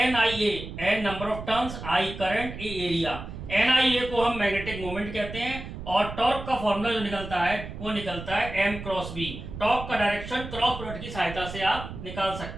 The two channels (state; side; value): noise; right; rumble, 10 dB below the sound